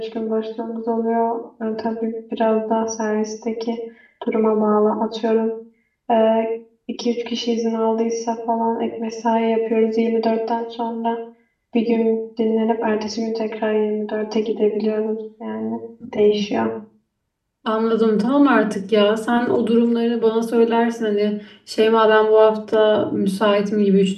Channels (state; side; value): identical; both; correlation 1.00